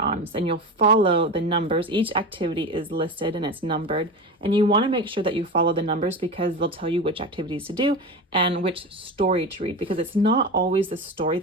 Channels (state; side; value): normal; both; correlation 0.25